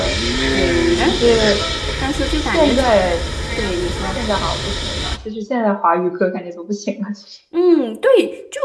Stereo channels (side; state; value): both; identical; correlation 1.00